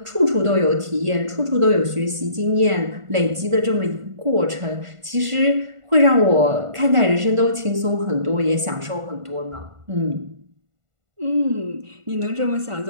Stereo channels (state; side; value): late; left; 1.5 ms